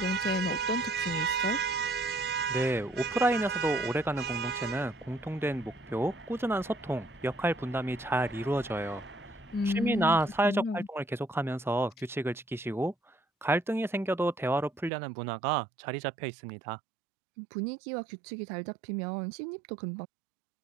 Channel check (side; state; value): left; drops out; at 14.9 s